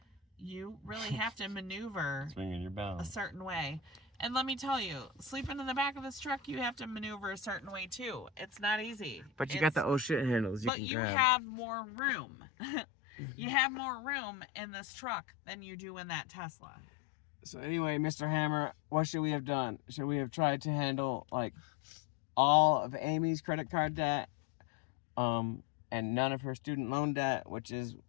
you really have to maneuver It's ringing your bell. a certain way. And let me tell you, sleeping in the back of this truck, you have to maneuver a certain way too. It's not easy. But you got the oh shit handles. But can you grab. have more room. You have more room in this truck than you do in that Tesla. So anyway, Mr. Hammer, what should we have done? Should we have tried to handle like all of Amy's credit card debt, and none of her student loan debt, which is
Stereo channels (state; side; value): drops out; right; at 10.7 s